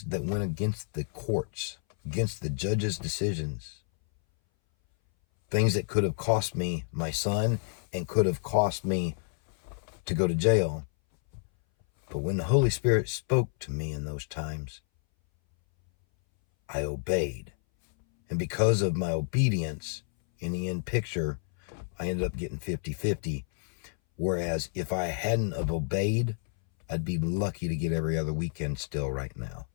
that went against the courts, against the judge's decisions. Things that could have cost me my son and could have cost me to go to jail. But when the Holy Spirit spoke to me in those times, I obeyed. And because of my obedience, in the end picture, I ended up getting 50-50. Whereas if I hadn't have obeyed, I'd be lucky to get every other weekend still right now.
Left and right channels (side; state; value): right; silent; 58 dB below the other